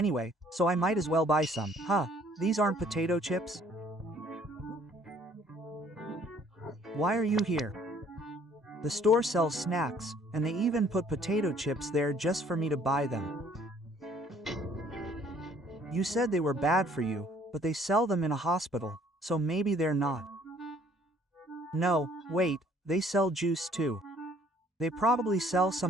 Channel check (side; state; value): both; normal; correlation 0.59